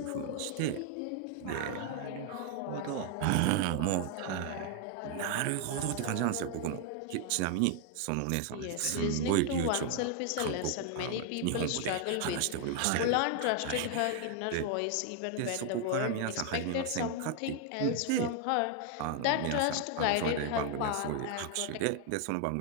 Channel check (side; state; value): both; different; correlation 0.00